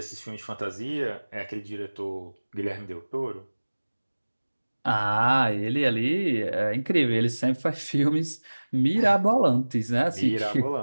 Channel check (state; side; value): inverted; both; correlation -1.00